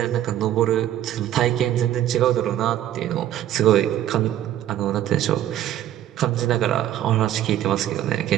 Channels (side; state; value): left; quieter; 12.2 dB